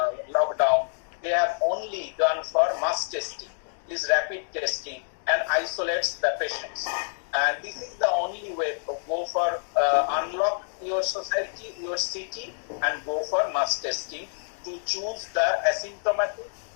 lockdown. They have only gone for mass testing, this rapid testing, and isolates the patients. And this is the only way to go for unlock your society, your city, and go for mass testing to choose the asymptomatic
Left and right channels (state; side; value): silent; right; digital silence